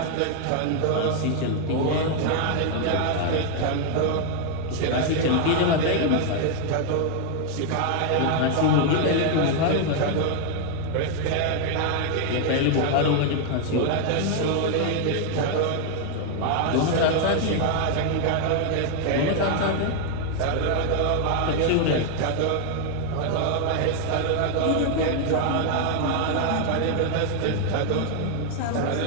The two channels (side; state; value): both; different; correlation 0.00